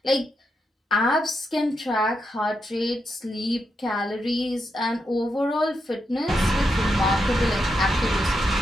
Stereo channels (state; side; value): normal; both; correlation 0.84